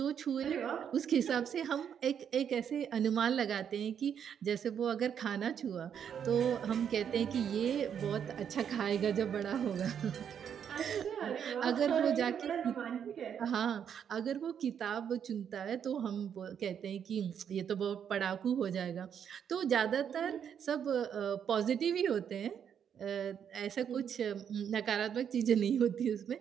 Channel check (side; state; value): left; quieter; 8.3 dB